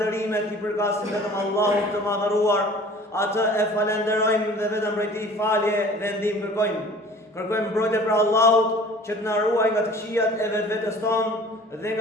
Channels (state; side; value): normal; both; correlation 0.47